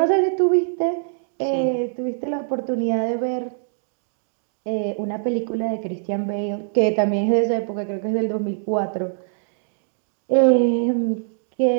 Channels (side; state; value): left; silent; digital silence